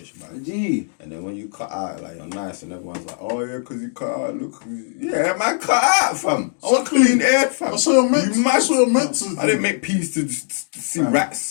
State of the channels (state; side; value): silent; right; digital silence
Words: man. Gee. And then when you cut out, like, you're nice and everyone's like, oh yeah, because you cut out, look. Yeah, man, cut out, fam. I want clean air, fam. That's what you're meant to. You mad? That's what you're meant to. I didn't make peace to see